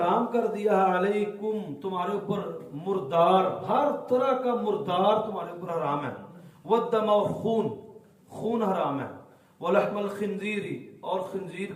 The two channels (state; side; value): identical; both; correlation 1.00